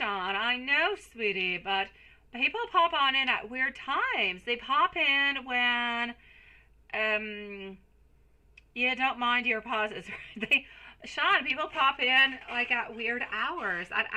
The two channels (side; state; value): both; identical; correlation 1.00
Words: I know, sweetie, but people pop on in at weird times. They pop in when you don't mind your pauses. Sean, people pop in like at weird hours, at